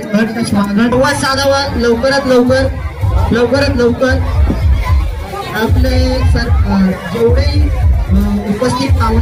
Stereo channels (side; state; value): both; identical; correlation 1.00